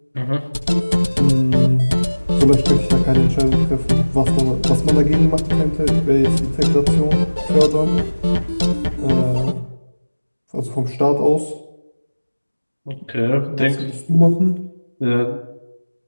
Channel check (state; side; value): inverted; both; correlation -1.00